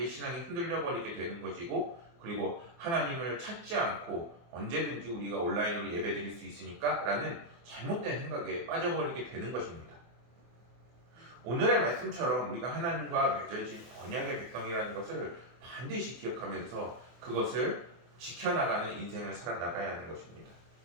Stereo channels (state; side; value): late; left; 24 ms